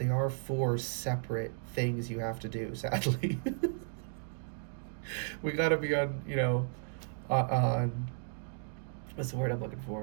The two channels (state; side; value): silent; left; digital silence